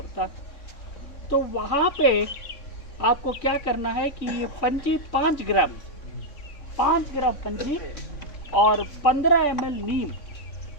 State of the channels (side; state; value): right; late; 3.4 ms